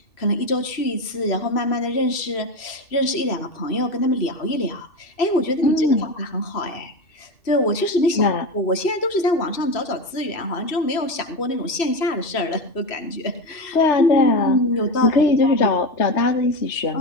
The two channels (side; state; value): right; late; 3.0 ms